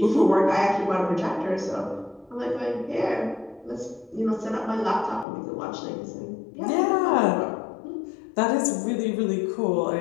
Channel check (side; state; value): right; drops out; at 5.2 s